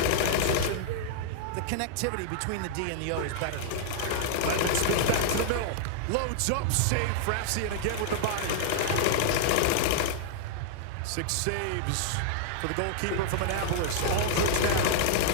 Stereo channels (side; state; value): both; different; correlation -0.01